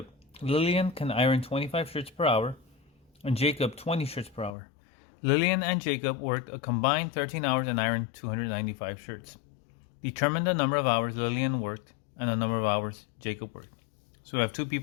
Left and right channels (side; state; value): right; drops out; at 4.5 s